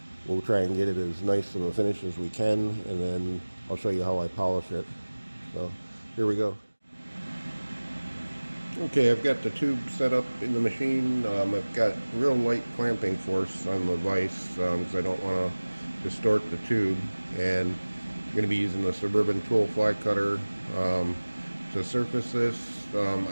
we'll try and get it as nice of a finish as we can, and then I'll show you how I polish it. So here we go. Okay, I've got the tube set up in the machine. I've got real light clamping force on the vise because I don't want to distort the tube, and I'm going to be using the Suburban tool fly cutter to surface this.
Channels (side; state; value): both; inverted; correlation -1.00